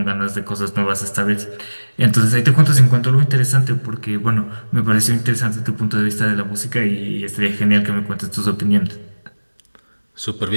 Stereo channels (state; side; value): inverted; both; correlation -1.00